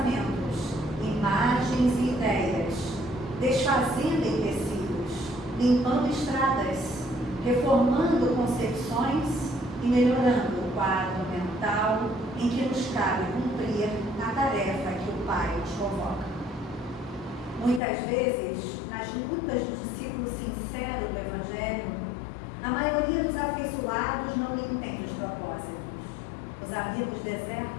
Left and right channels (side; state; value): right; drops out; at 17.8 s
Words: imagens e ideias, desfazendo em tecidos, limpando estradas, reformando concepções e melhorando o quadro mental em que nos cabe cumprir a tarefa que o Pai nos convoca. Muitas vezes, nas lutas do discípulo sincero do Evangelho, a maioria dos afeiçoados não lhe entende os propósitos. Os amigos